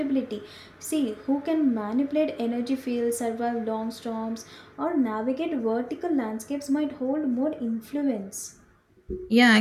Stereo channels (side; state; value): both; identical; correlation 1.00